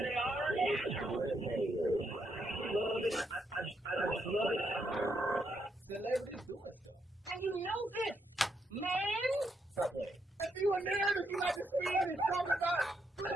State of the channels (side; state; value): both; normal; correlation 0.78